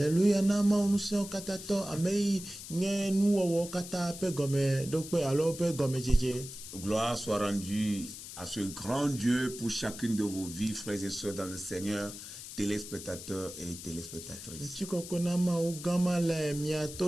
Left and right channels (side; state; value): left; noise; hiss, 12 dB below the sound